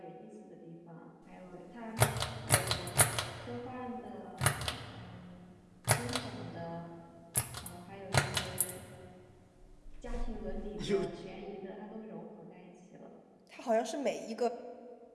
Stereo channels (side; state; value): both; identical; correlation 1.00